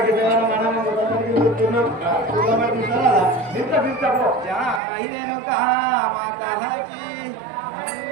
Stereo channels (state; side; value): drops out; left; at 4.8 s